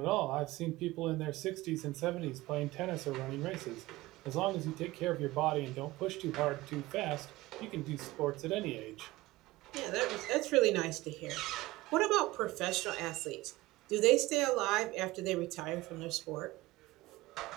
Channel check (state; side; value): quieter; left; 19.3 dB